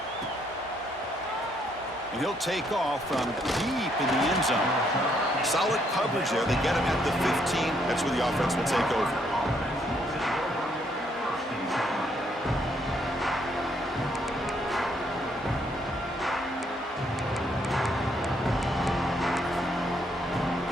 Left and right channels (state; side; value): normal; both; correlation 0.71